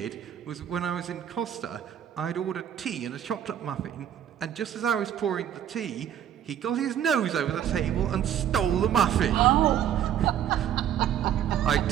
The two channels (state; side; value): quieter; left; 10.0 dB